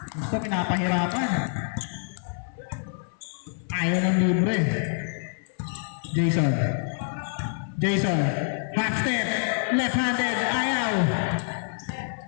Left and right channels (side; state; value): right; silent; 61 dB below the other